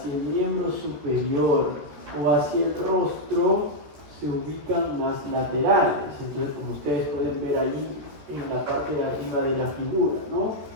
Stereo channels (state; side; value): late; left; 13 ms